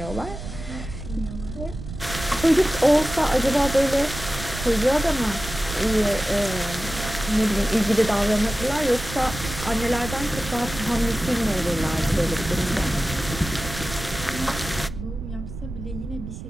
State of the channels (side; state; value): right; noise; rumble, 9 dB below the sound